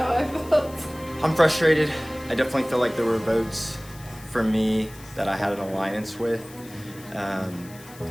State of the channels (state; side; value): noise; left; hiss, 20 dB below the sound